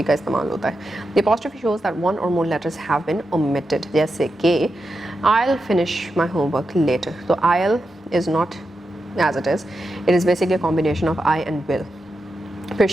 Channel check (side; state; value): both; normal; correlation 0.88